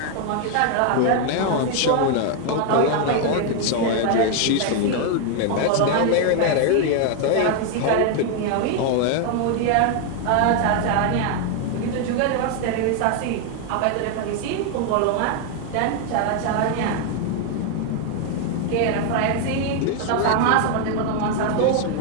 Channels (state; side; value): different; both; correlation 0.01